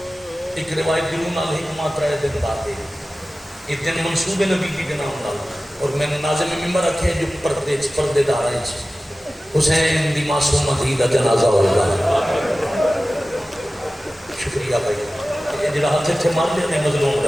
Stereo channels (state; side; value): normal; both; correlation 0.96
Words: ایک روایت دیرونا حکمات 3 دن بعد. یہ دن منصوب نبی کی کے نام نال. اور میں نے ناظم ممبر رکھے جو پردے دار ہیں حسین دی معصومہ دی دا جنازہ ہوگا. شکریہ بھائی. یہ جڑا ہاتھ تھے مان لیا نے مظلوم